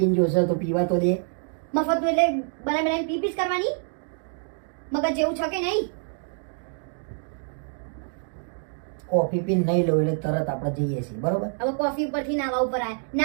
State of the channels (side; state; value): left; silent; 61 dB below the other